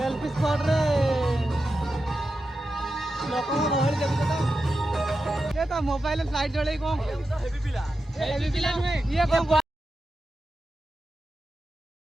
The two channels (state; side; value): normal; both; correlation 0.90